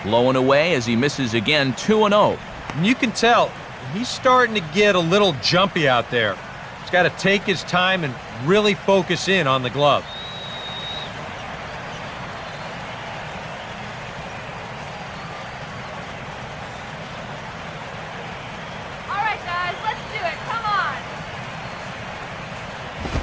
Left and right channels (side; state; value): both; identical; correlation 1.00